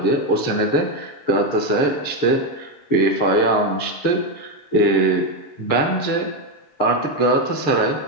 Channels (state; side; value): late; right; 6.7 ms